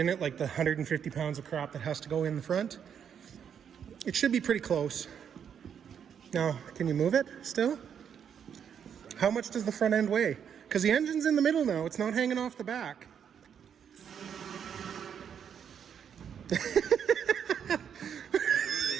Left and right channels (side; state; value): left; quieter; 8.1 dB